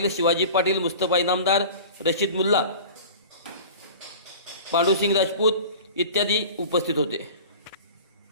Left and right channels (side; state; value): both; inverted; correlation -0.39